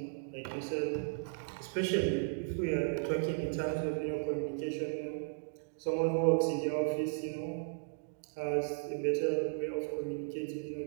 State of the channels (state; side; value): silent; left; digital silence